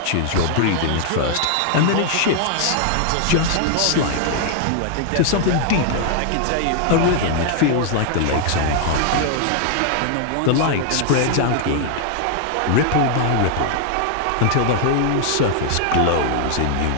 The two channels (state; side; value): different; both; correlation 0.00